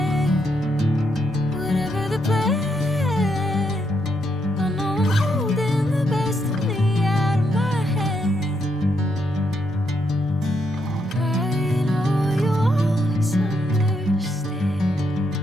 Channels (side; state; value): both; normal; correlation 0.78